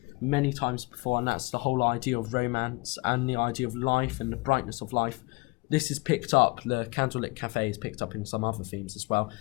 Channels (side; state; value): right; quieter; 25.8 dB